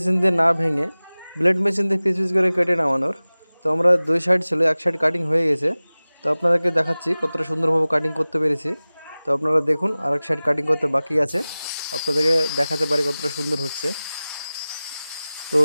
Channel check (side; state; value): both; inverted; correlation -0.98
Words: দিয়ে না ভেঙে ব্লেড মেশিন দিয়ে পিস পিস করে কেটে নামানোর। তো আমরা দুই সাইড ছিল, এক সাইড কাটিং হয়ে গেছে। তো আপনাদেরকে দেখাচ্ছি কতটা সুন্দরভাবে কাটিং করতে পেরেছি। তো আপনারা দেখুন, আর এক সাইড কাটিং করতে বাকি আছে, আপনাদেরকে দেখাতে পারি কতটা সুন্দর হচ্ছে। তো